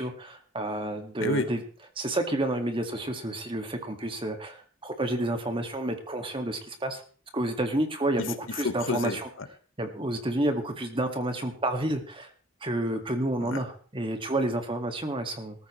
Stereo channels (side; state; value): both; normal; correlation 0.54